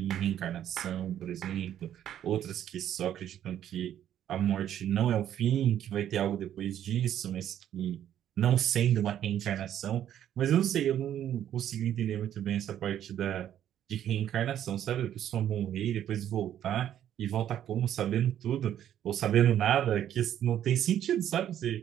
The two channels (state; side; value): quieter; left; 10.7 dB